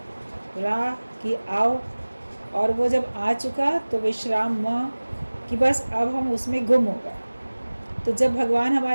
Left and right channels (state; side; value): inverted; both; correlation -1.00